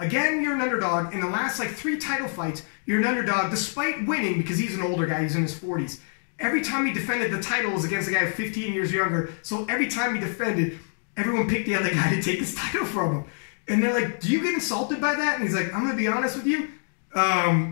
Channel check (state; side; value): silent; right; 58 dB below the other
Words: you're an underdog. In the last like 3 title fights, you're an underdog despite winning, because he's an older guy, he's in his 40s. Every time he defended the title was against a guy 15 years younger. So every time he defended, everyone picked the other guy to take his title from him. And they're like, do you get insulted by that? And he's like, I'm going to be honest with you.